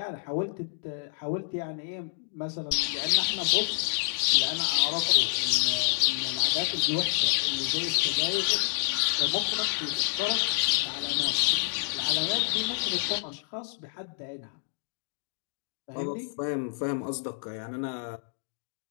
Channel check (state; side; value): silent; right; digital silence